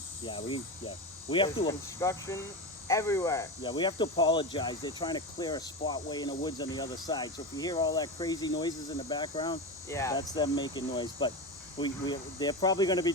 We have to. Construction everywhere. Yeah, we have to apologize. They're trying to clear a spot way in the woods on the other side. So if you hear all that crazy noises in the background, yeah, that's them making noise. But they're probably going to be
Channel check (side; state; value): both; normal; correlation 0.21